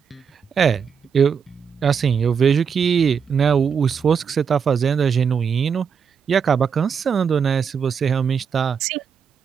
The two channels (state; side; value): quieter; left; 6.7 dB